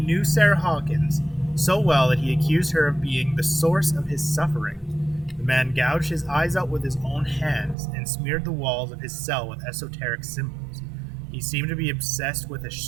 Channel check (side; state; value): left; drops out; at 7.8 s